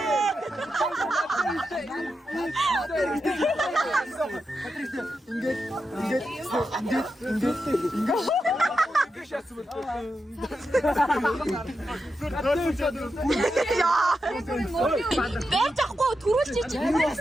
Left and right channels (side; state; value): both; normal; correlation 0.88